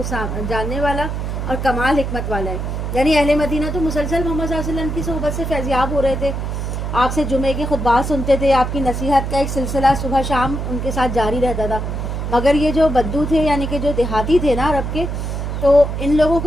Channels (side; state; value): right; noise; hum, 3 dB below the sound